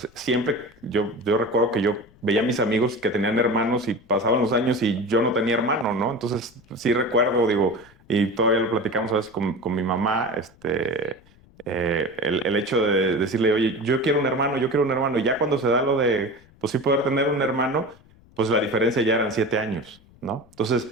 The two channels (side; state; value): left; noise; rumble, 27 dB below the sound